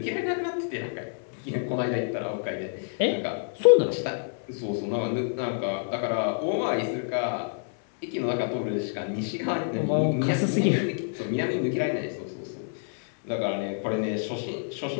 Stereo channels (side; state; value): right; silent; digital silence